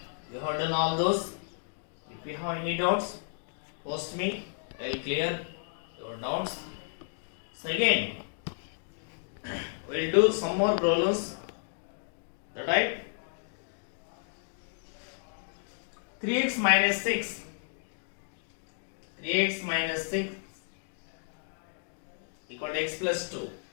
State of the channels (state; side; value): silent; right; digital silence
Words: you have done all those. If you have any doubts, post me. I will clear your doubts. So again, we will do some more problems. That right? 3x minus 6. 3x minus 6 equal to x plus 2.